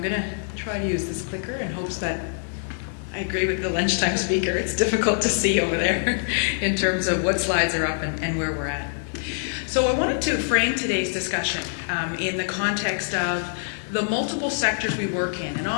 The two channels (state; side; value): silent; right; digital silence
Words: going to try to use this clicker in hopes that I agree with the lunchtime speaker. It's difficult to see over there in terms of what slides are up and where we're at. So I wanted to frame today's discussion in the context of the multiple sectors we work in. And